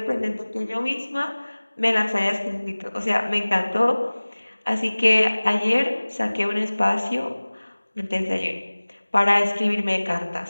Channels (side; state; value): both; inverted; correlation -1.00